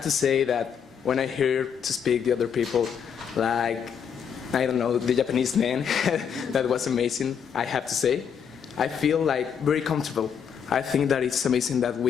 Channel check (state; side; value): quieter; right; 7.5 dB